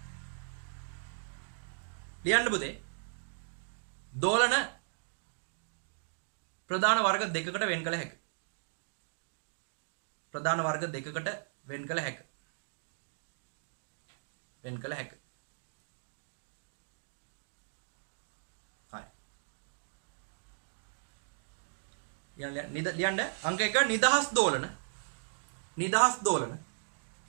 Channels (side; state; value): left; silent; digital silence